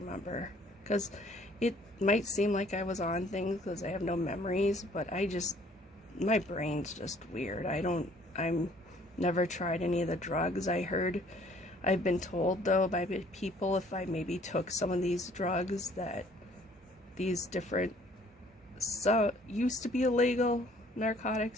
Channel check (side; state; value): both; normal; correlation 0.58